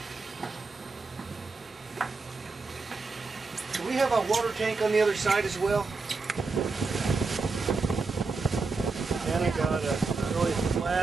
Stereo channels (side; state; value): left; quieter; 4.1 dB